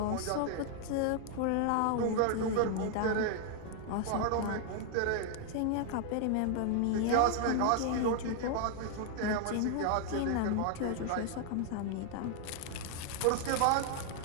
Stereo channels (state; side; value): different; both; correlation 0.00